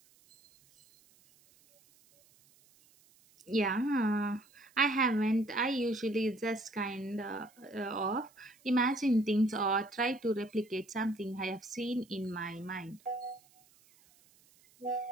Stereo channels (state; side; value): noise; right; hiss, 30 dB below the sound